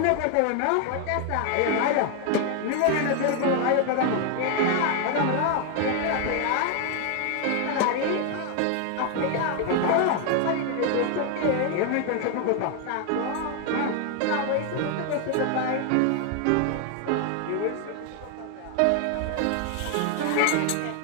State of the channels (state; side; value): different; both; correlation 0.01